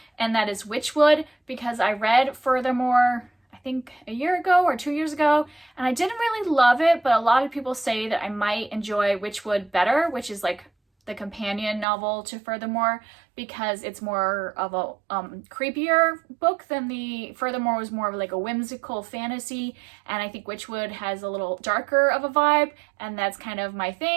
and that is Witchwood, because I read Furthermore, I think a year ago or 2 years ago, and I didn't really love it, but a lot of people say that I might enjoy Witchwood better, which is like the companion novel to Furthermore, because it's more of a creepier book than the Furthermore was more of like a whimsical fantasy, and I think Witchwood has a little darker of a vibe, and that's kind of my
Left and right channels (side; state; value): left; drops out; at 11.9 s